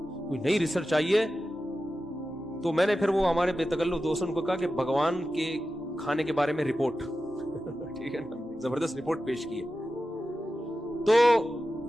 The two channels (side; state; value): both; normal; correlation 0.93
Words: कोई नई रिसर्च आई है। तो मैंने फिर वो हमारे बेतकल्लुफ दोस्तों को कहा कि भगवान के खाने के बारे में रिपोर्ट ठीक है ना, जबरदस्त रिपोर्ट पेश की है। तो